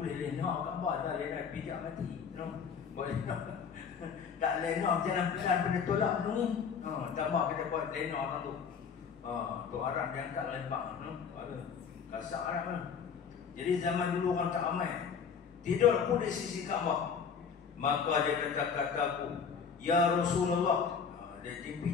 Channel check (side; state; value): right; quieter; 6.4 dB